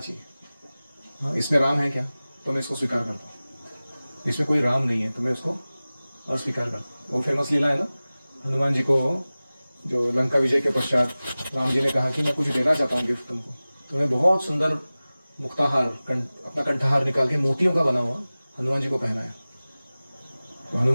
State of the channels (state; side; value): inverted; both; correlation -0.98